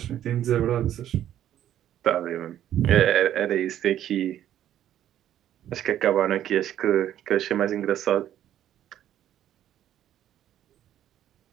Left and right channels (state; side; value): quieter; left; 11.4 dB